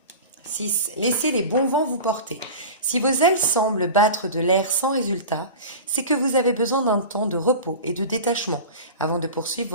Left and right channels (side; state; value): both; inverted; correlation -0.32